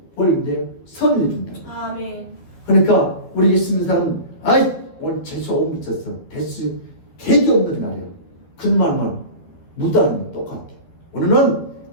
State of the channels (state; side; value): late; right; 12 ms